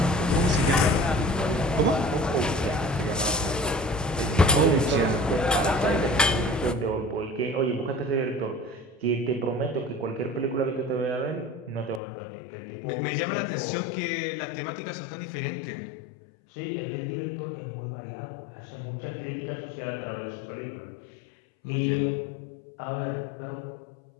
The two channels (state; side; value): drops out; right; at 12.0 s